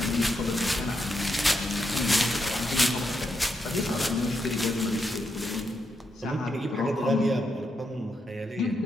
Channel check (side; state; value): both; normal; correlation 0.82